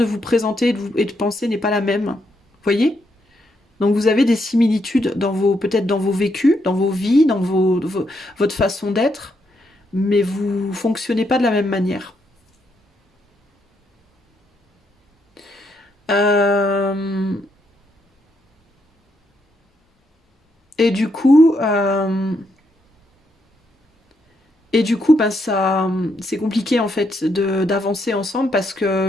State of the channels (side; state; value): both; normal; correlation 0.78